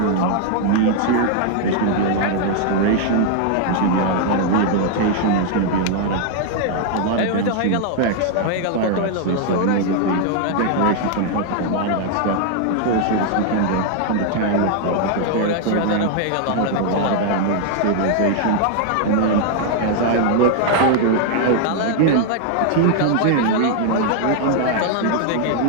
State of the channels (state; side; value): different; both; correlation 0.00